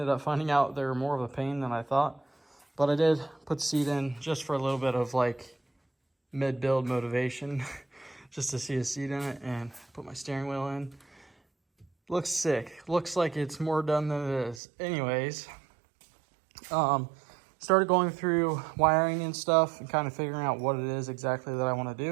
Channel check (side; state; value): left; drops out; at 14.6 s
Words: up finding out they were more of a pain than I thought. But I did put the seat in just for a little bit of like mid-build motivation, just to see a seat in it, and put my steering wheel in. Looks sick. Looks like it's more done than it is. Anyways, started going through wiring and stuff and kind of figuring out what it is exactly that I want to